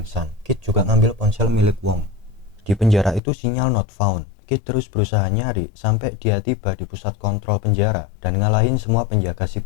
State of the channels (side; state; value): right; drops out; at 3.2 s